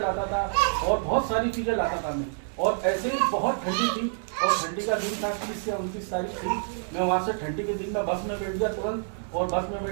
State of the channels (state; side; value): silent; left; digital silence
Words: था और बहुत सारी चीज़ें लाता था मैं। और ऐसे ही बहुत ठंडी थी और ठंडी का दिन था 30 से 29 तारीख थी। मैं वहाँ से ठंडी के दिन में बस में बैठ गया तुरंत और बस में